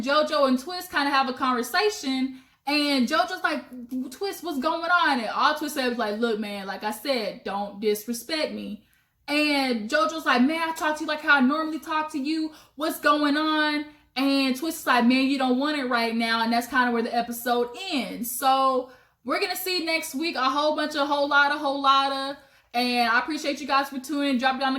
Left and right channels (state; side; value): identical; both; correlation 1.00